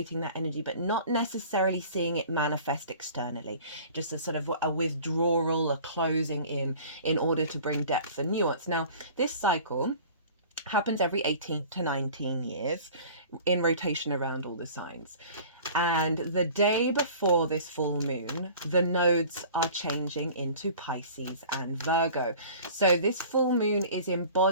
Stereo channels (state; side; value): inverted; both; correlation -0.45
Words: that energy, but not necessarily seeing it manifest externally. Just a sort of a withdrawal, a closing in order to bring depth and nuance. Now, this cycle happens every 18 to 19 years in rotation around all the signs. And the day before this full moon, the nodes are changing into Pisces and Virgo. So this full moon is